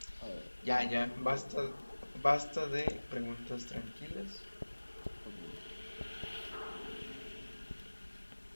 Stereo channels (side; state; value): both; inverted; correlation -1.00